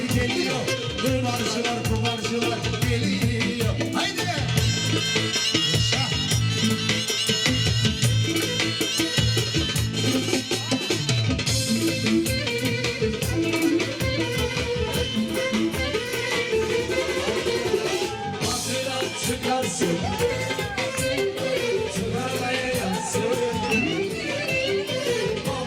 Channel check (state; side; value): identical; both; correlation 1.00